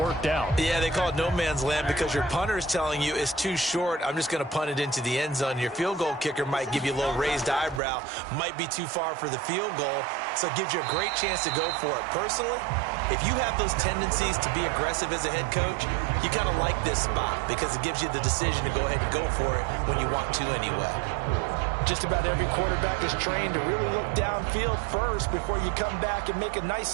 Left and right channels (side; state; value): left; drops out; at 7.8 s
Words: out. Yeah, they call it no man's land because your punter is telling you it's too short. I'm just going to punt it into the end zone. Your field goal kicker might give you a little raised eyebrow, might be too far for the field goal, so it gives you a great chance to go for it. Personally, if you have those tendencies to be aggressive as a head coach, you kind of like this spot because it gives you the decision to go ahead and go for it when you want to anyway. Just about every quarterback is trained to really look downfield first before you come back and make a nice,